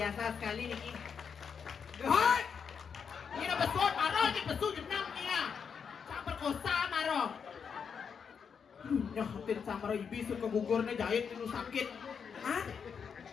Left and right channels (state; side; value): quieter; right; 6.6 dB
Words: sekali Niki. Hoi! Ini udah besut, Maro, ini besut jenang nih ya. Sangat perkosa Maro. Ya, hampir sama ibi suka gugurnya jahit itu sakit. Hah?